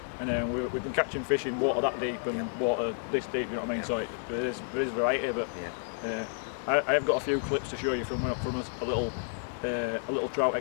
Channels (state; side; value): silent; right; 57 dB below the other